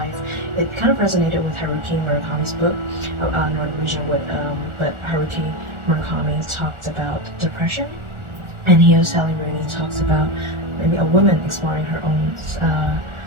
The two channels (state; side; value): late; left; 1.4 ms